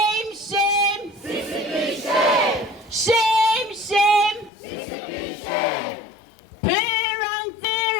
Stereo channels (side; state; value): right; drops out; at 4.5 s